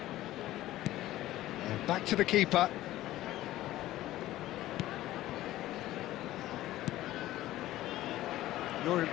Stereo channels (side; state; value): right; quieter; 15.2 dB